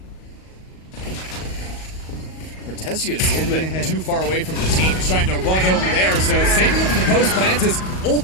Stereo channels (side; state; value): right; late; 38 ms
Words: Cortezia is a little bit too far away from the team. He's trying to run over there, so saving him for the post plant as